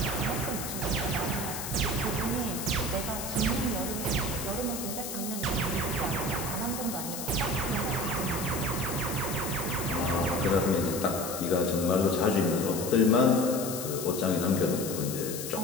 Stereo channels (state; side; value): noise; left; hiss, 7 dB below the sound